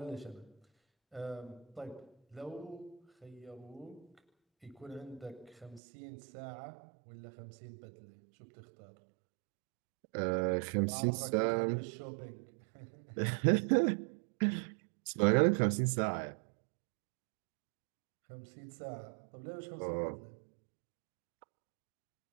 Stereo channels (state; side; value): drops out; left; at 5.8 s